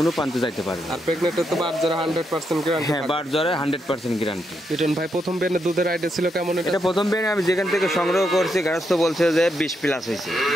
প্রান্তে যাইতে পারবে। আর প্রেগনেন্টে তো বার জ্বরে 100% গ্যারান্টি। হ্যাঁ, বার জ্বরে 100% গ্যারান্টি। লিটন ভাই প্রথম বেনে দুধের আইডিয়া ছিল কেমন? এটা প্রথম বেনে আমি যেখান থেকে সংগ্রহ করছি, গারস্থ বলছে যে 20 প্লাস হয়েছে।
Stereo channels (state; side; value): normal; both; correlation 0.81